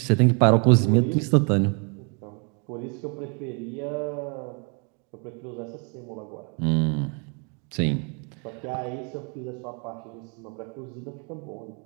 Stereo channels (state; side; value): quieter; left; 35.8 dB